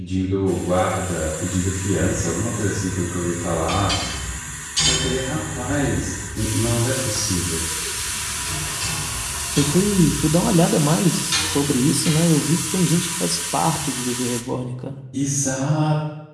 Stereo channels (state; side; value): identical; both; correlation 1.00